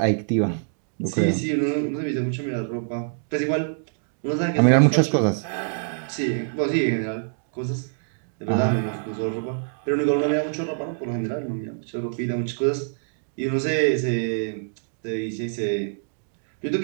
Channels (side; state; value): left; silent; digital silence